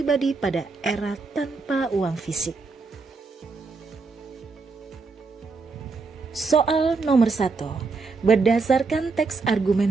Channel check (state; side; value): quieter; left; 4.3 dB